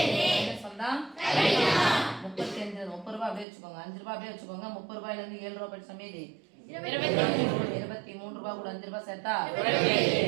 30 ரூபாய் அப்படியே வச்சுக்கோங்க. 5 ரூபாய் அப்படியே வச்சுக்கோங்க. 30 ரூபாயில இருந்து 7 ரூபாய் படிச்ச மீதி 23 ரூபாய் கூட 5 ரூபாய் சேர்த்தா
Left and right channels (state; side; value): drops out; left; at 3.5 s